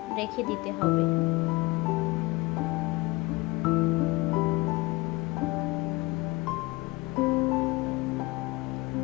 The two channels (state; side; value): quieter; right; 22.6 dB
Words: রেখে দিতে হবে।